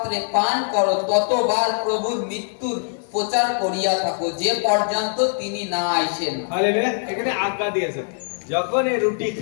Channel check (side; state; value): right; silent; 57 dB below the other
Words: পান করো, ততবার প্রভুর মৃত্যুর প্রচার করিয়া থাকো, যে পর্যন্ত তিনি না আইসেন। হালেলুয়া। এখানে আজ্ঞা দিয়েছেন, যখন এই রুটি